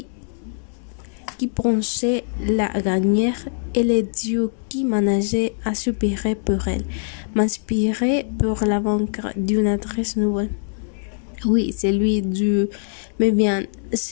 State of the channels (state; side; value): silent; right; digital silence